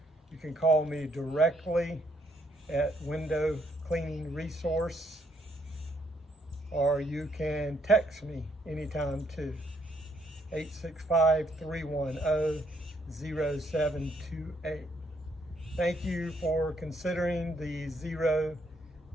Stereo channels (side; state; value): both; normal; correlation 0.72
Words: You can call me directly at Window Cleaning Resource, or you can text me anytime too. 865-310-0728. Thank you for considering the Xero